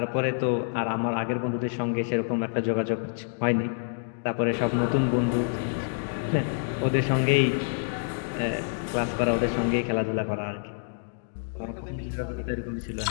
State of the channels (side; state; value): right; silent; digital silence